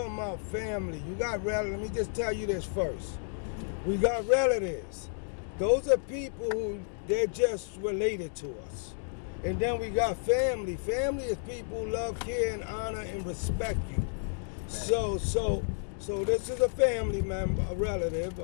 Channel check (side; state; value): right; silent; digital silence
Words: about family. You got relatives. Let me just tell you this first. We got relatives. Those are people who they're just related to us. And then we got family. Family is people who love, care, and honor and respect you. So this is a family member, a relative,